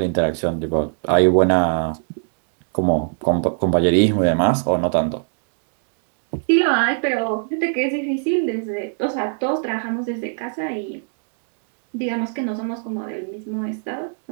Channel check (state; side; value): silent; left; digital silence